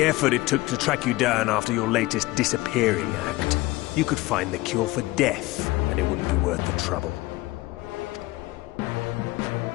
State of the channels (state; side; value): quieter; right; 19.9 dB